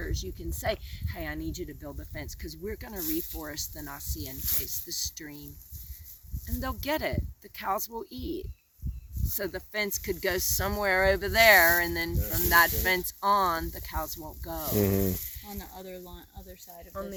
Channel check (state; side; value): identical; both; correlation 1.00